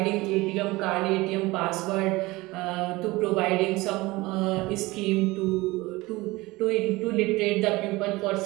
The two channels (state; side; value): quieter; left; 21.1 dB